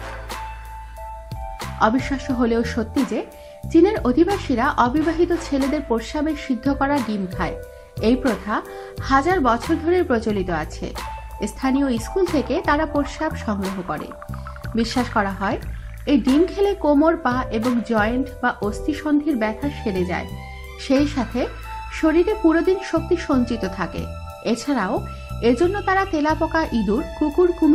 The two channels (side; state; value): both; identical; correlation 1.00